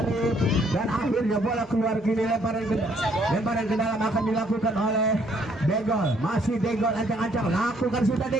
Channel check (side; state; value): both; normal; correlation 0.66